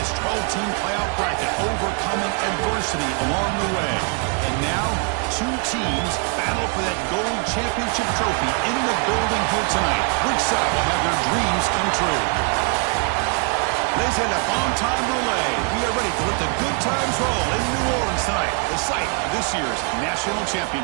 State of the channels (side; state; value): left; quieter; 38.4 dB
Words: 12-team playoff bracket, overcoming adversity along the way. And now, two teams battle for that gold championship trophy in the building here tonight. Which side will have their dreams come true? Laissez le bon temps rouler. We are ready to let the good times roll in New Orleans tonight, the site of this year's national